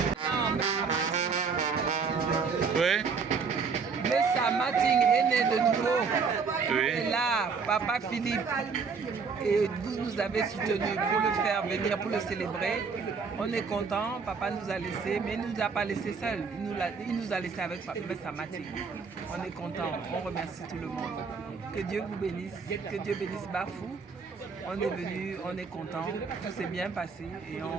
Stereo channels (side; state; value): left; quieter; 5.3 dB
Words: Oui. Le Samating est né de nouveau. Oui. Et là, Papa Philippe, et vous nous avez soutenus pour le faire venir, pour le célébrer. On est content, Papa nous a laissés, mais il ne nous a pas laissés seuls. Il nous a laissés avec Papa Samating. On est content, on remercie tout le monde. Que Dieu vous bénisse, que Dieu bénisse Bafou. On est venu, on est content, tout s'est bien passé et